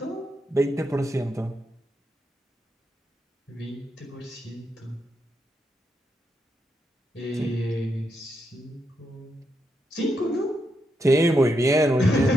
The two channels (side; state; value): both; normal; correlation 0.82